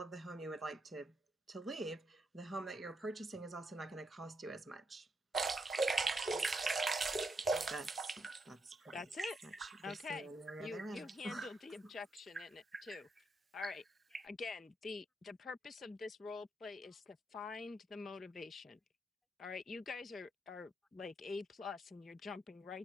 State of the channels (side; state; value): both; normal; correlation 0.80